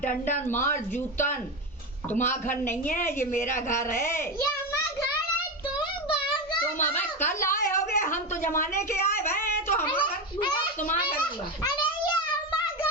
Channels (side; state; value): both; normal; correlation 0.17